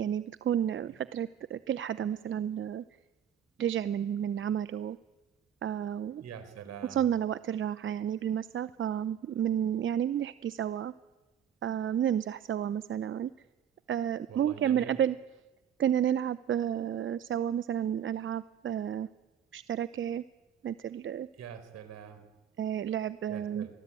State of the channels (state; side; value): quieter; left; 9.3 dB